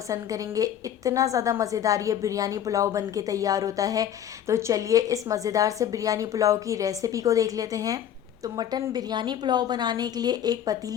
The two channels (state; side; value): quieter; right; 10.1 dB